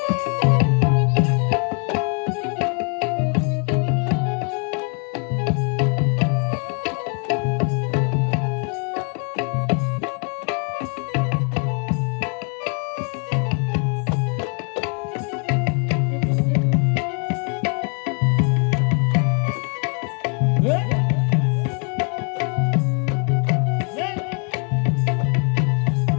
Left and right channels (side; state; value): right; quieter; 39.6 dB